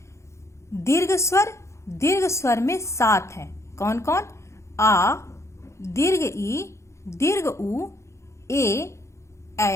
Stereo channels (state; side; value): late; right; 0.14 ms